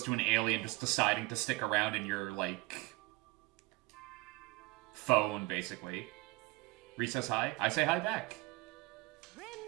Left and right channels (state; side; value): quieter; left; 23.1 dB